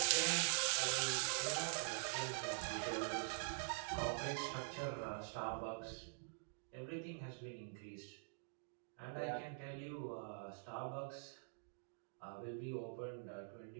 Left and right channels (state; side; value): silent; left; digital silence